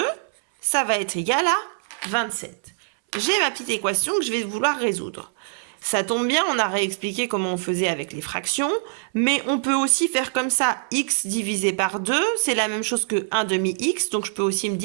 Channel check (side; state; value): left; silent; 63 dB below the other